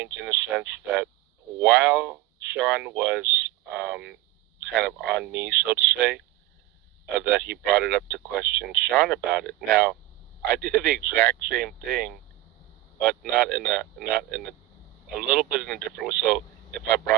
in the sense that while Sean was kind of on me, so to say, that he brought it up to question Sean about it. Now, I did the exact same thing, but not in a little bit in a different way. So if I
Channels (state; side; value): quieter; left; 16.4 dB